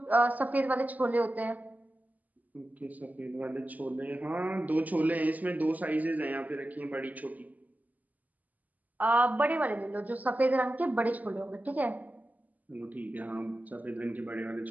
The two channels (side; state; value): left; late; 0.079 ms